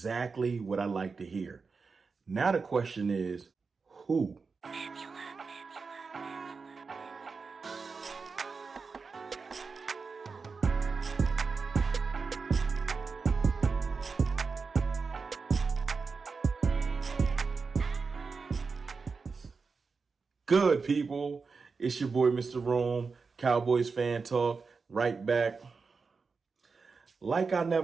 what I like to hear. Now the question is, who? Good people, it's your boy Mr. Rome, Cowboys fan talk, right back. Like I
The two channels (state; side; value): quieter; left; 4.7 dB